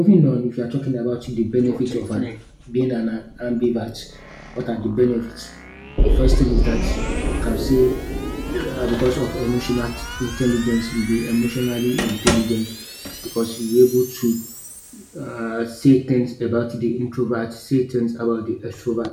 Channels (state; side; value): identical; both; correlation 1.00